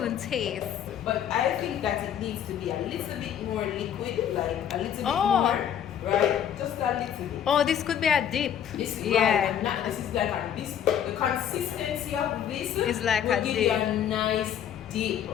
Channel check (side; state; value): right; quieter; 9.5 dB